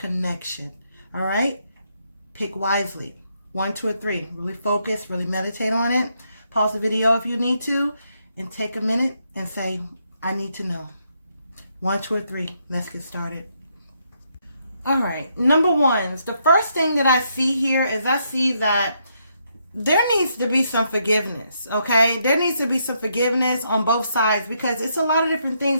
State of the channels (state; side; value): inverted; both; correlation -0.76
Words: All right? Pick wisely. 1, 2, or 3. Really focus, really meditate on it. Pause the video if you need to, and take a minute and say, I need to know. 1, 2, or 3. Let's get started. All right. Number 1, the first thing that I see here is I see that there needs to be some forgiveness, okay? There needs to be some forgiveness on both sides because it's a lot of different